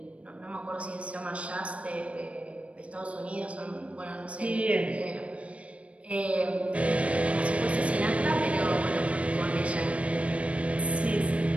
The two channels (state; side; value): late; left; 0.063 ms